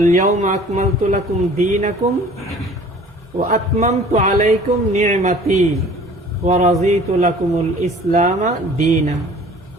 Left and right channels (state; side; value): normal; both; correlation 0.49